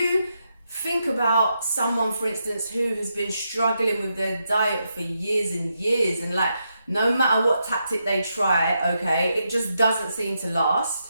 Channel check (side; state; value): both; inverted; correlation -0.83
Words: think about someone, for instance, who has been struggling with their diet for years and years, and like no matter what tactic they try, okay, it just doesn't seem to